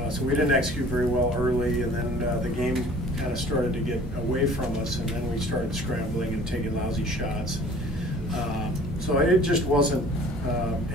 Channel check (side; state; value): both; normal; correlation 0.50